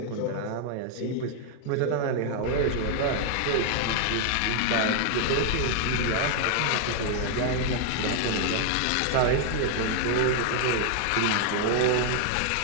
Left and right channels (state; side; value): different; both; correlation 0.00